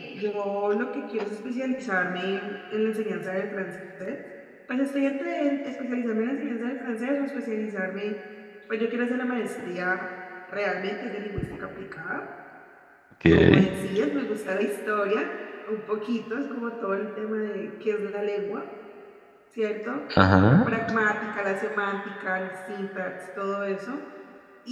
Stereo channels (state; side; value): identical; both; correlation 1.00